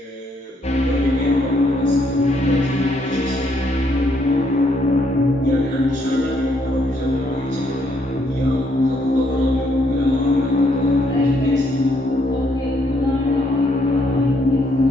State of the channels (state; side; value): normal; both; correlation 0.72